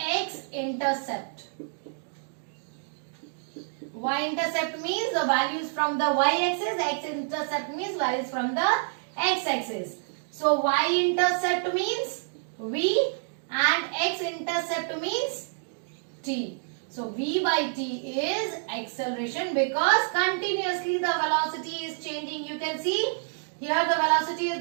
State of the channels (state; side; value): silent; left; digital silence